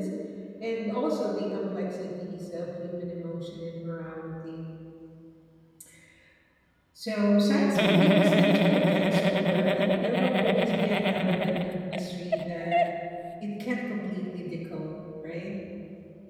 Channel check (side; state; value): both; identical; correlation 1.00